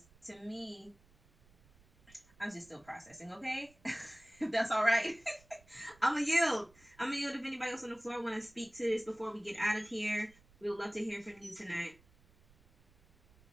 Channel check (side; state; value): right; noise; rumble, 28 dB below the sound